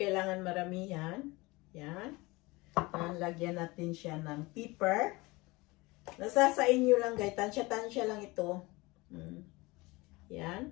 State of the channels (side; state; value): right; quieter; 23.0 dB